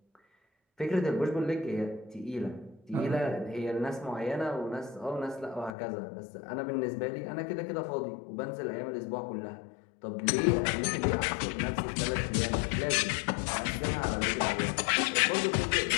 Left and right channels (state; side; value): drops out; right; at 5.8 s